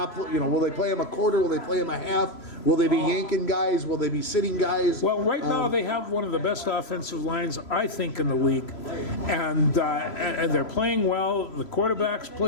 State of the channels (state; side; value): late; right; 3.0 ms